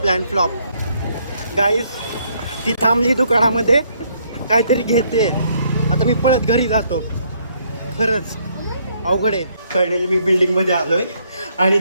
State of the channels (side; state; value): both; inverted; correlation -0.69